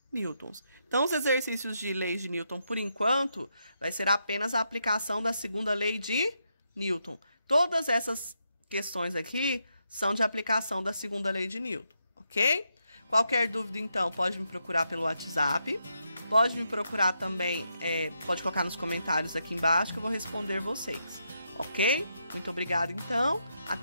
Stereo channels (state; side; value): inverted; both; correlation -0.82